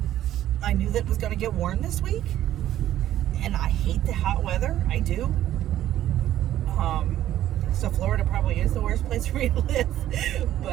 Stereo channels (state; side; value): quieter; left; 12.6 dB